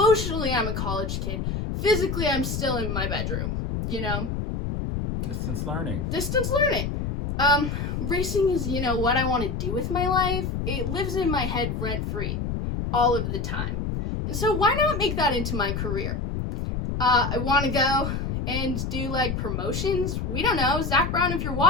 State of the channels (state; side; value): noise; left; rumble, 3 dB below the sound